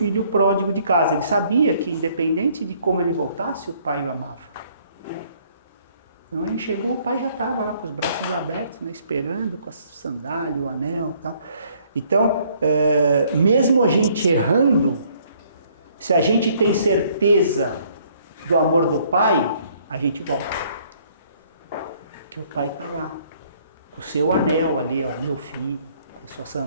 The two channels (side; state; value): both; inverted; correlation -0.63